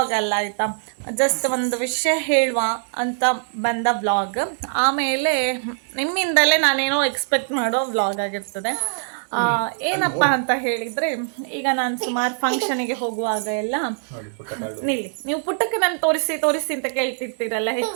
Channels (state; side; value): silent; left; digital silence